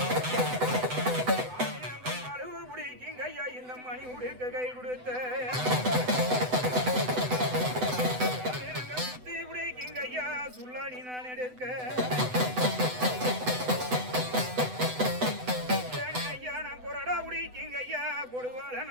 அளவு பிடிக்குங்க ஐயா இந்த மணி உடுக்க கை கொடுத்த சுத்தி பிடிக்குங்க ஐயா சுல்லாணி நான் எடுக்க கொடுவால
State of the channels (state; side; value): late; left; 8.0 ms